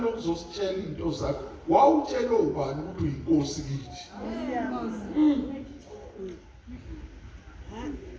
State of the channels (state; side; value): identical; both; correlation 1.00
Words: into zakho. Wawutshela ubani ukuthi uyinkosi kithi?